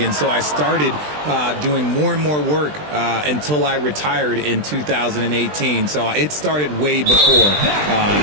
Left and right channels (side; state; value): left; late; 20 ms